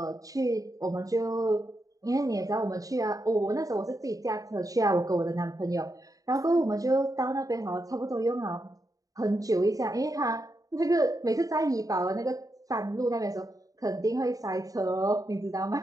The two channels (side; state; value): left; late; 0.17 ms